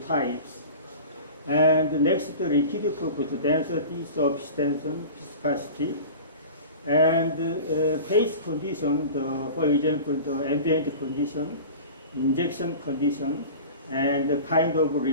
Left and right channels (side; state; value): both; inverted; correlation -0.36